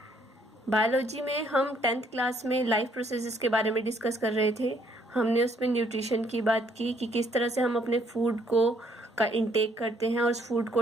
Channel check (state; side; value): normal; both; correlation 0.67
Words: Biology में हम 10th class में life processes के बारे में डिस्कस कर रहे थे। हमने उसमें न्यूट्रिशन की बात की कि किस तरह से हम अपने फूड को का इंटेक करते हैं और उस फूड